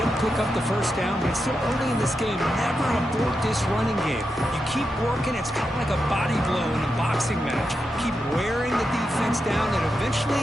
pick up the first down, but it's still early in this game. Never abort this running game. You keep working. It's kind of like a body blow in a boxing match. Keep wearing the defense down, and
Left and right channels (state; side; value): normal; both; correlation 0.87